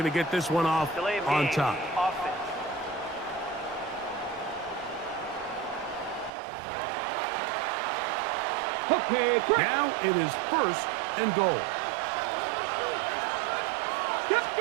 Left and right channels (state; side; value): drops out; left; at 6.3 s